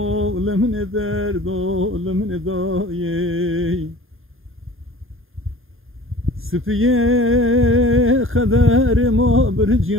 lemne derdo lemne daye Spiye kader ma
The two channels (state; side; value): late; left; 0.60 ms